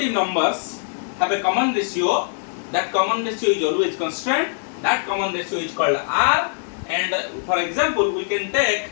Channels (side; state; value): right; silent; digital silence